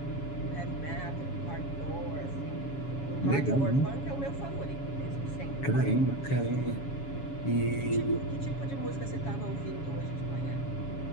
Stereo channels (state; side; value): late; right; 7.2 ms